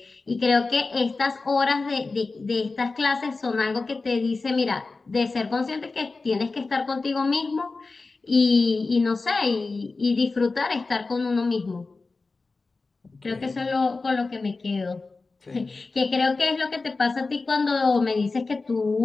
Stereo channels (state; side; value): quieter; right; 3.8 dB